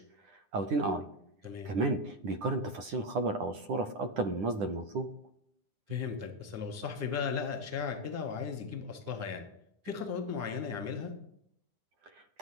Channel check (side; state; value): left; late; 9.9 ms